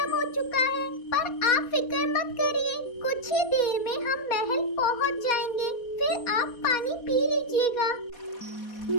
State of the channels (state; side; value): late; right; 4.2 ms